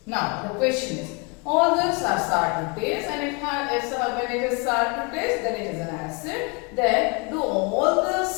Now the question is, all those are sour to taste, and when it is sour to taste, then it is an acid. Then do all the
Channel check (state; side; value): quieter; right; 31.0 dB